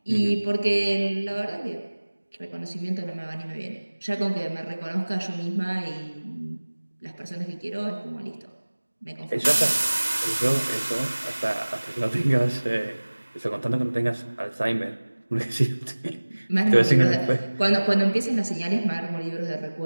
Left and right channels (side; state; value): both; inverted; correlation -1.00